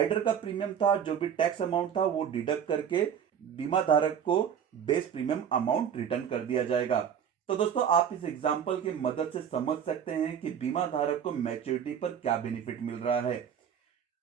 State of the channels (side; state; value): left; quieter; 8.4 dB